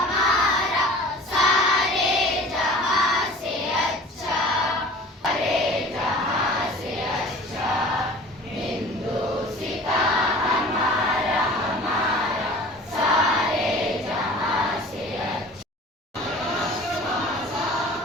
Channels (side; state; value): both; normal; correlation 0.44